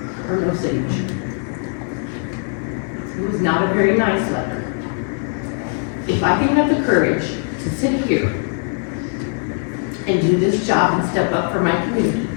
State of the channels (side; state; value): right; silent; 55 dB below the other